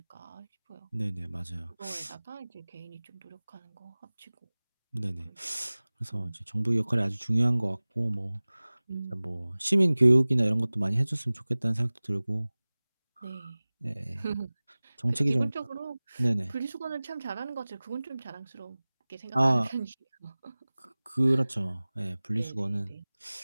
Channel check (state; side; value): inverted; both; correlation -0.99